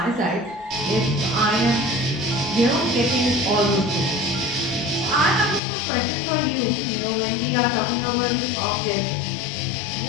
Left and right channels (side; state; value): right; drops out; at 5.6 s